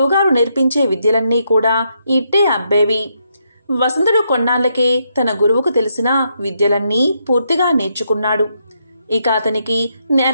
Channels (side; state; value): both; inverted; correlation -0.78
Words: నేర్పించే విద్యలన్నీ కూడా ఇట్టే అబ్బేవి. వసంతుడు కొన్నాళ్లకే తన గురువుకు తెలిసిన విద్యలన్నీ పూర్తిగా నేర్చుకున్నాడు. ఇక అతనికి